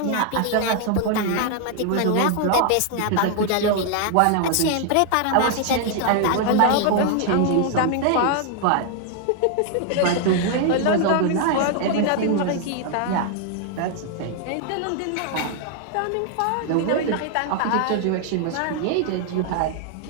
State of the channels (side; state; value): both; different; correlation 0.00